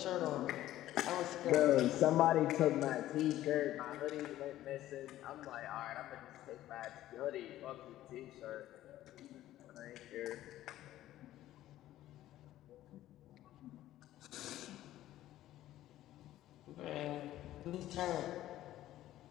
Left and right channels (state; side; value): quieter; right; 14.0 dB